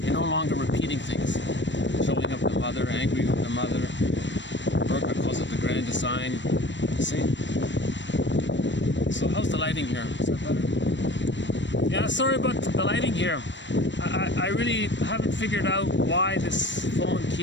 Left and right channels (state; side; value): late; right; 0.53 ms